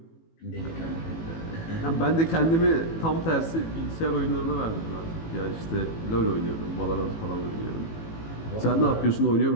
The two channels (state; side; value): late; right; 18 ms